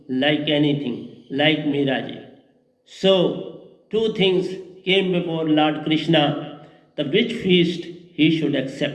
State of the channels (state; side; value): identical; both; correlation 1.00